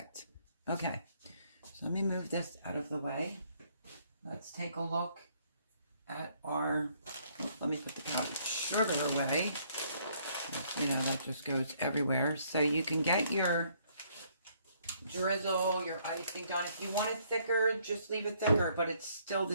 Okay, so let me move this out of the way. Let's take a look at our, let me put the powdered sugar away. You know, that just goes everywhere. So you can get your drizzle, your icing done. If you want it thicker, just leave it thicker, but it's still the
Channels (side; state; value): both; inverted; correlation -0.66